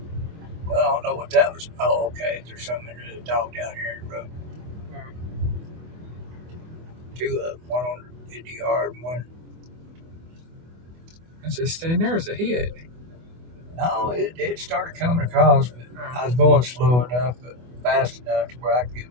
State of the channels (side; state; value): left; late; 24 ms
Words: Well, I don't know what that was. Oh, okay. There's something in the dog down here in the road. Two of them, one in the yard and one. I just stand there as a hit. No, it started coming across, but I was going slow enough, but fast enough to where I could